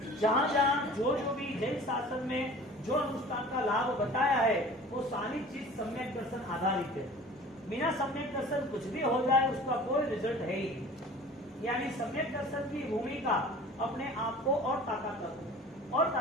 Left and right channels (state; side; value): normal; both; correlation 0.43